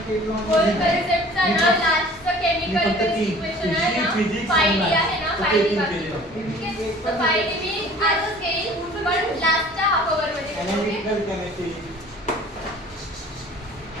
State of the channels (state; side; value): normal; both; correlation 0.48